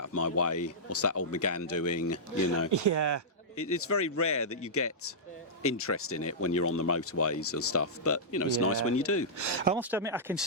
of my way. What's that old Megane doing? You know. Yeah. It's very rare that you get interest in it when you're on the motorways and stuff. But, you know, it's nice when you do. I must admit, I can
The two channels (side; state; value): both; normal; correlation -0.13